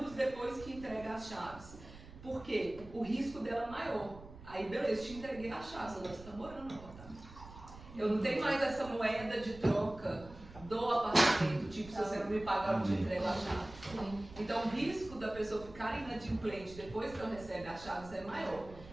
depois que entrega as chaves? Porque o risco dela é maior. Aí beleza, te entreguei as chaves, agora você está morando no apartamento. Eu não tenho mais essa moeda de troca do apartamento, tipo, se você não me pagar, eu te entrego a chave. Então o risco da pessoa ficar inadimplente depois que ela recebe as chaves é maior.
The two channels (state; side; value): noise; right; rumble, 17 dB below the sound